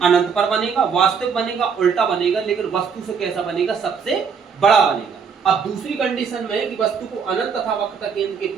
अनंत पर बनेगा, वास्तविक बनेगा, उल्टा बनेगा, लेकिन वस्तु से कैसा बनेगा सबसे बड़ा बनेगा। अब दूसरी कंडीशन में कि वस्तु को अनंत तथा वक्रता केंद्र के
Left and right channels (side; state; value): left; quieter; 6.2 dB